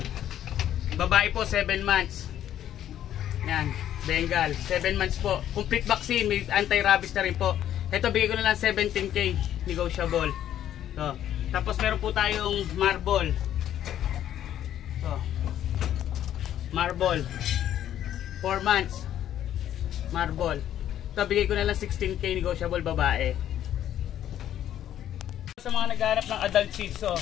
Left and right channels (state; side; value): quieter; right; 11.2 dB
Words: Babae po, 7 months. Yan, Bengal, 7 months po. Complete vaccine, may anti-rabies na rin po. Ito, bigay ko na lang 17K, negotiable. So, tapos meron po tayong marble. Ito, marble. 4 months. Marble. Ito, bigay ko na lang 16K, negotiable, babae. Sa mga naghahanap ng adult Shih Tzu,